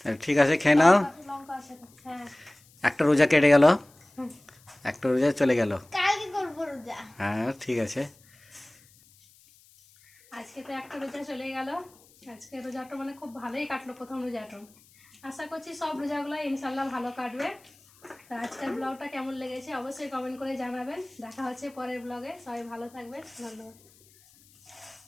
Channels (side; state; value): left; noise; hiss, 28 dB below the sound